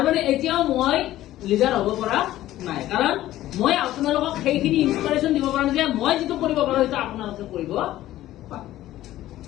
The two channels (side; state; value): right; quieter; 14.5 dB